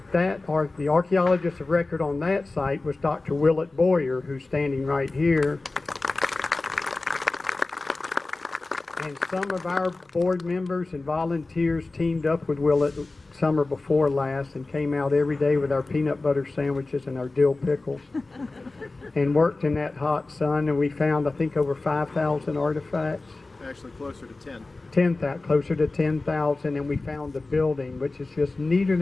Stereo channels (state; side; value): quieter; right; 3.3 dB